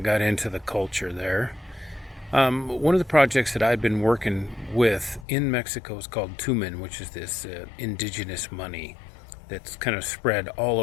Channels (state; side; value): drops out; right; at 5.2 s